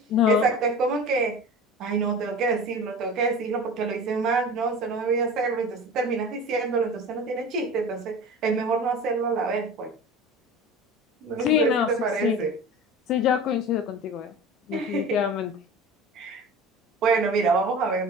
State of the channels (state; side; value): normal; both; correlation 0.36